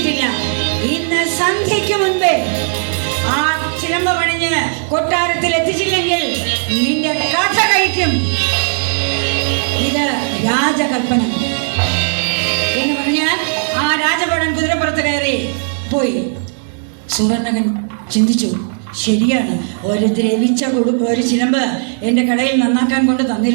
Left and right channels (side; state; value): left; silent; digital silence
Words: ഇന്ന് സന്ധ്യയ്ക്ക് മുൻപേ ആ ചിലമ്പ് പണിഞ്ഞ് കൊട്ടാരത്തിൽ എത്തിച്ചില്ലെങ്കിൽ നിന്റെ കഥ കഴിക്കും. ഇത് രാജകൽപ്പന എന്ന് പറഞ്ഞാൽ ആ രാജഭടൻ കുതിരപ്പുറത്ത് കയറി പോയി. സുവർണകൻ ചിന്തിച്ചു, ശരിയാണ്, ഒരു ദ്രവിച്ച ഒരു ചിലമ്പ് എൻ്റെ കടയിൽ നന്നാക്കാൻ കൊണ്ട്